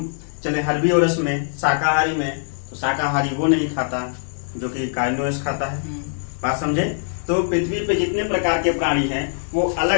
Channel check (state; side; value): silent; right; digital silence